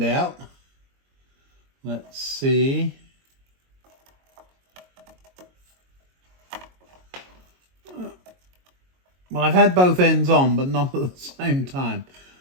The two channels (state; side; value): late; left; 22 ms